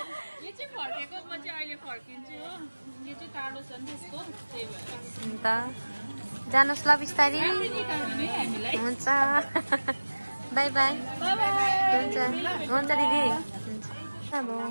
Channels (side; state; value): both; inverted; correlation -1.00